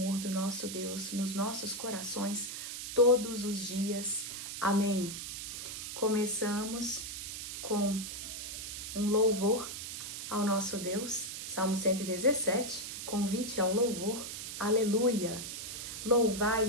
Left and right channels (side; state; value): right; noise; hiss, 7 dB below the sound